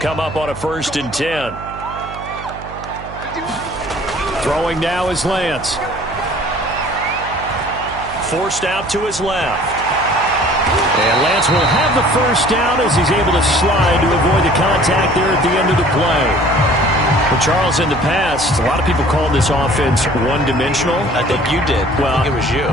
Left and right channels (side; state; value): right; noise; hum, 14 dB below the sound